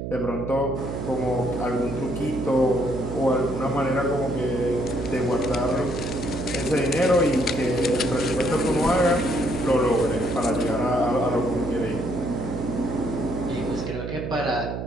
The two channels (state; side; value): noise; right; hum, 5 dB below the sound